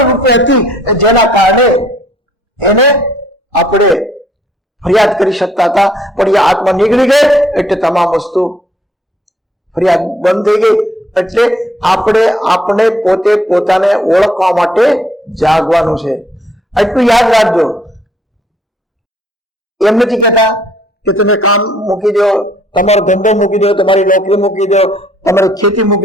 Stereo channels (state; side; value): normal; both; correlation 0.63